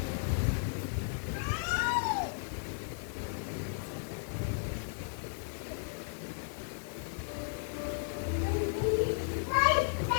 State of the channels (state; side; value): silent; right; 55 dB below the other